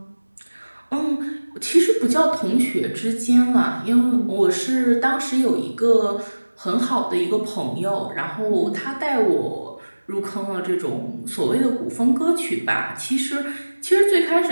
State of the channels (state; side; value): inverted; both; correlation -1.00